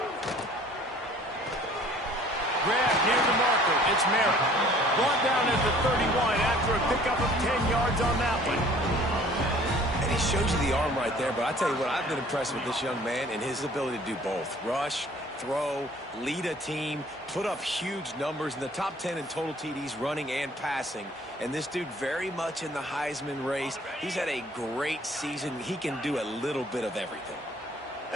Grab near the marker, it's Merritt. Brought down at the 31 after a pickup of 10 yards on that one. And he shows you the arm right there, but I tell you what, I've been impressed with this young man and his ability to do both. Rush, throw, lead a team, put up huge numbers in the top 10 in total TDs running and passing. And this dude very much in the Heisman race. He's had a great season. He can do a little bit of everything.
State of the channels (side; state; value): both; normal; correlation 0.53